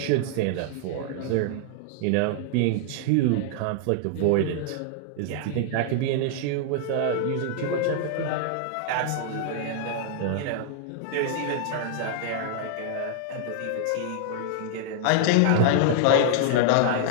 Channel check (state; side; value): different; both; correlation -0.01